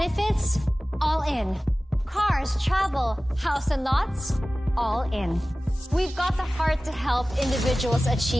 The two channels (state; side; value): normal; both; correlation 0.97